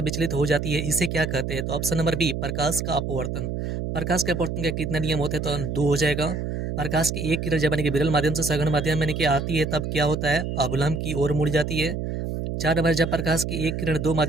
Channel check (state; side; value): noise; right; hum, 3 dB below the sound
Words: विचलित हो जाती है, इसे क्या कहते हैं? तो ऑप्शन नंबर बी, प्रकाश का अपवर्तन। प्रकाश के अपवर्तन के कितने नियम होते हैं? तो 2 हो जाएगा। प्रकाश की एक किरण जब यानी कि विरल माध्यम से सघन माध्यम में यानी कि आती है तब क्या होता है? अवलंब की ओर मुड़ जाती है। 4 नंबर, जब प्रकाश की एक किरण दो